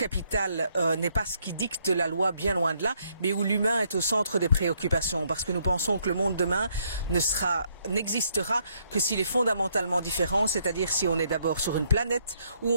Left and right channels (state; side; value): inverted; both; correlation -0.71